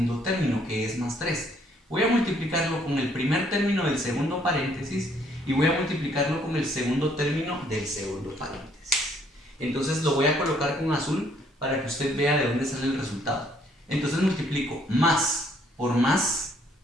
término, que es más 3. Voy a multiplicarlo con el primer término del segundo paréntesis y voy a multiplicarlo con el segundo término del segundo paréntesis. Entonces lo voy a colocar con azul para que usted vea de dónde sale el resultado. Entonces multiplico más por más,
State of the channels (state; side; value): normal; both; correlation 0.65